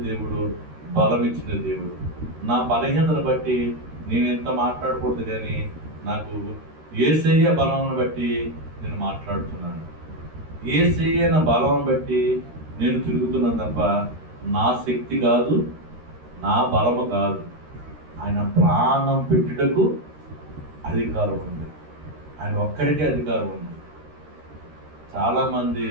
దేవుడు, బలం ఇచ్చిన దేవుడు. నా బలహీనతను బట్టి నేను ఎంత మాట్లాడకూడదు కానీ నాకు యేసయ్య బలమును బట్టి నేను మాట్లాడుతున్నాను. యేసయ్య నా బలం బట్టి నేను తిరుగుతున్నాను తప్ప నా శక్తి కాదు, నా బలము కాదు. ఆయన ప్రాణం పెట్టుటకు అధికారం ఉంది. ఆయన ఒక్కడికే అధికారం ఉంది. చాలామంది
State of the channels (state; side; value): late; left; 13 ms